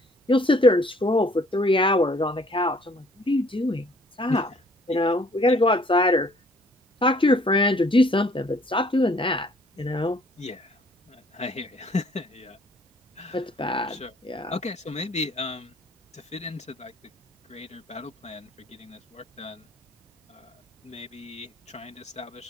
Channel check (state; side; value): normal; both; correlation 0.59